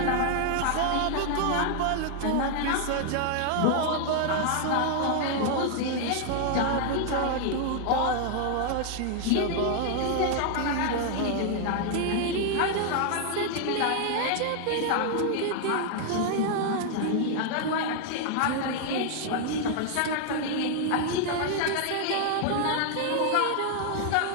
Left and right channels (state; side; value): different; both; correlation 0.00